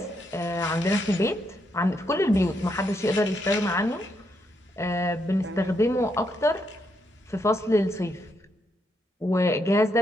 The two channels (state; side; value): normal; both; correlation 0.78